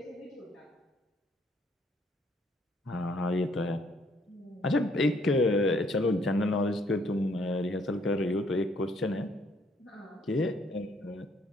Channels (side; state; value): both; normal; correlation 0.66